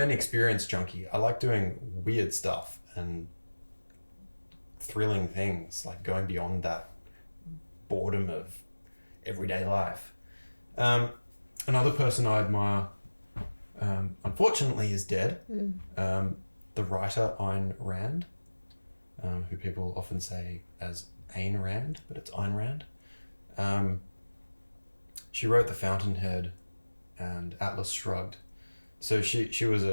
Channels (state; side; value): inverted; both; correlation -1.00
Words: experience junkie. I like doing weird stuff and thrilling things, like going beyond that boredom of everyday life. Another person I admire, unfortunately, is dead. The writer Ayn Rand, who people often say as Ayn Rand, but it's Ayn Rand. She wrote The Fountainhead and Atlas Shrugged. So she was